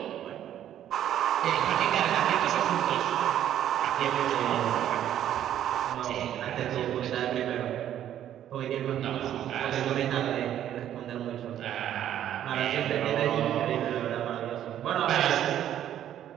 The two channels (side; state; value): left; quieter; 11.0 dB